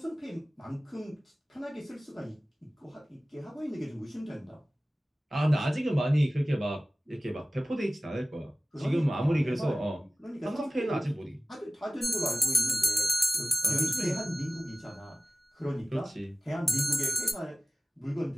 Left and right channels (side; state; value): both; normal; correlation 0.97